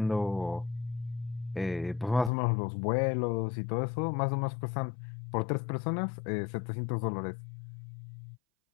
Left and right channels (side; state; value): right; drops out; at 2.3 s